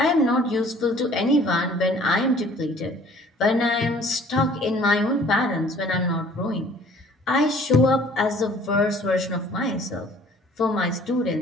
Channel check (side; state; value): both; normal; correlation 0.54